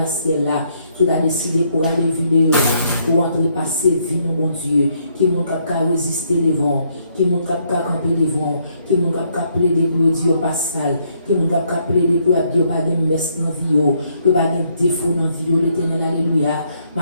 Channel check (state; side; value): inverted; both; correlation -0.71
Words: ciel là, tout a décidé pour aller vidéo, pour entrer passer vie, mon Dieu, qui m'ont qu'à résister les vents, qui m'ont qu'à camper les vents, qui m'ont qu'à plaider pour dire pas sale, qui m'ont qu'à plaider pour dire pas de messe dans vie, pour pas de défaut dans vie, l'éternel, alléluia.